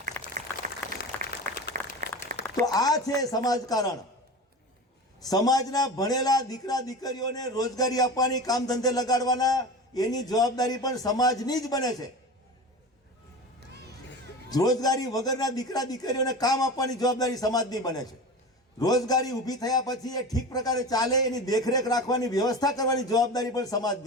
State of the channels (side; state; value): both; normal; correlation 0.31